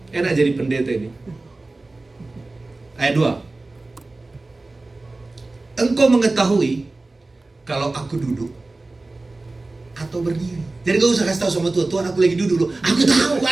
Enak jadi pendeta ini. Ayat 2. Engkau mengetahui kalau aku duduk atau berdiri. Jadi gak usah kasih tahu sama Tuhan, Tuhan aku lagi duduk loh. Aku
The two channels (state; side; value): quieter; left; 3.2 dB